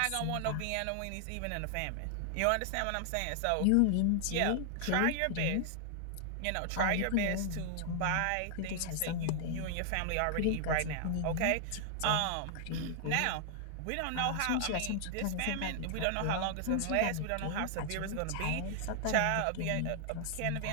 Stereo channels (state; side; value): different; both; correlation 0.00